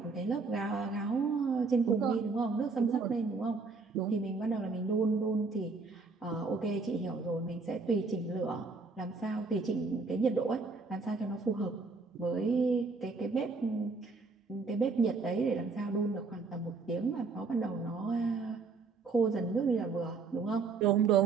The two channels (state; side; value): quieter; left; 4.3 dB